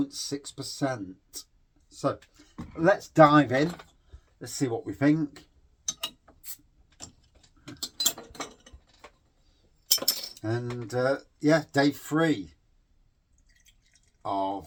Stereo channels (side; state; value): both; identical; correlation 1.00